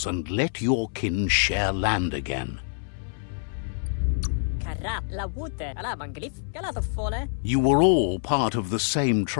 and let your kin share land again. You were all part of the same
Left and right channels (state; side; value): silent; right; 61 dB below the other